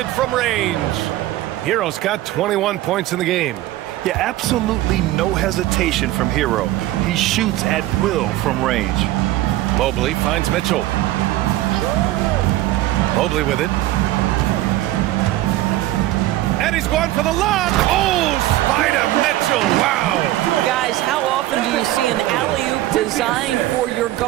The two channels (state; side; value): quieter; left; 15.5 dB